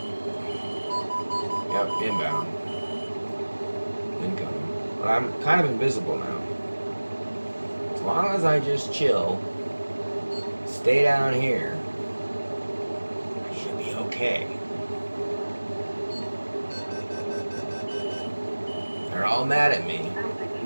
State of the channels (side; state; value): both; inverted; correlation -1.00